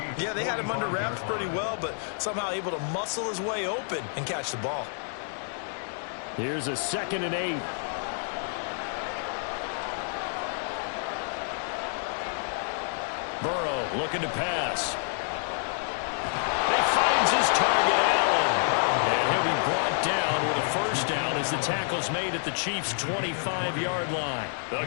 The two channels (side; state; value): right; silent; 59 dB below the other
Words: Yeah, they had him under wraps pretty well, but somehow able to muscle his way open and catch the ball. Here's a 2nd and 8. Burrow looking to pass. He finds his target, Allen. And he'll be brought down with a first down as the tackle's made at the Chiefs' 25-yard line. A